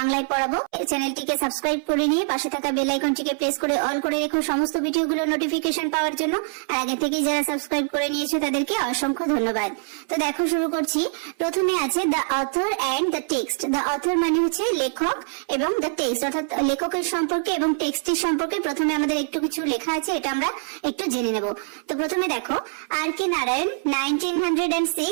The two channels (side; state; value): left; silent; 63 dB below the other